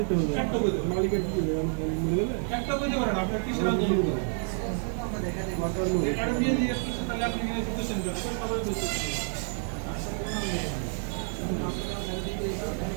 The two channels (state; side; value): silent; left; 55 dB below the other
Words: মালিকের কি একটা বলতে পারেন আপনার কিসের আন্দোলন